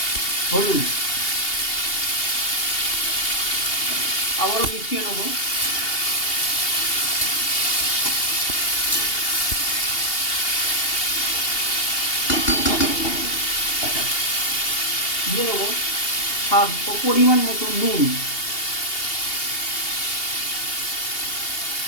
হলুদ। আবারও মিশিয়ে নেব। দিয়ে দেবো স্বাদ ও পরিমাণ মতো নুন।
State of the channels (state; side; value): late; right; 2.8 ms